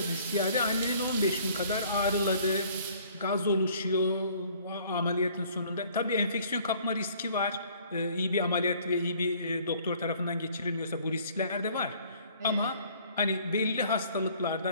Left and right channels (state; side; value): inverted; both; correlation -0.56